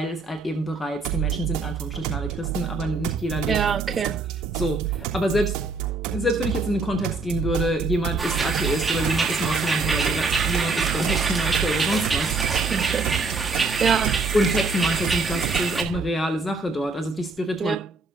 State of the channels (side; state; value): left; quieter; 3.6 dB